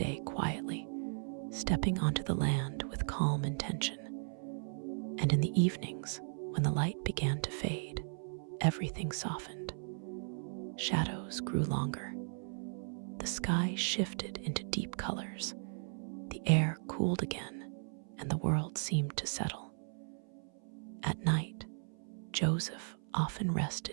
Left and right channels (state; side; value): silent; left; 53 dB below the other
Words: quietly, stepping onto the land with calm intention. And in the evenings, when the light began to fade, everything softened. Shadows grew longer. The sky shifted into deep colors. The air cooled again, and the world seemed to settle. At night, Joseph often